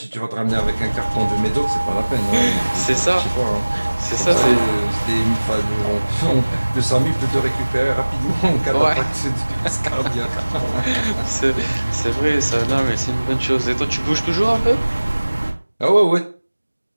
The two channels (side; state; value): both; inverted; correlation -1.00